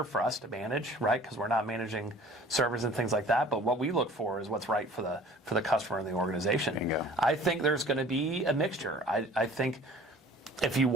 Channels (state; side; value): normal; both; correlation 0.48